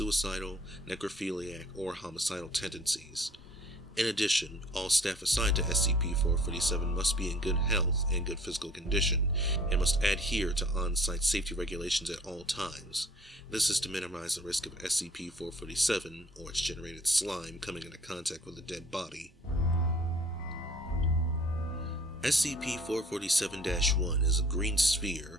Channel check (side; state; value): both; normal; correlation 0.54